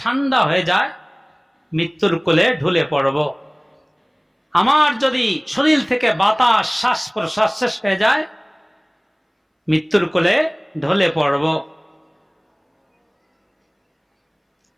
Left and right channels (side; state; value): both; identical; correlation 1.00